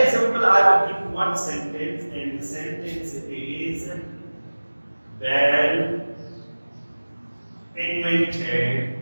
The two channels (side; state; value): both; inverted; correlation -1.00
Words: example, I will give you one sentence, and the sentence is, Bell